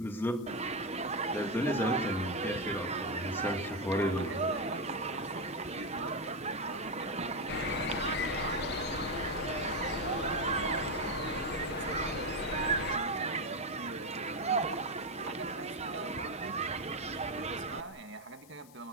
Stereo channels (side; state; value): left; noise; hiss, 23 dB below the sound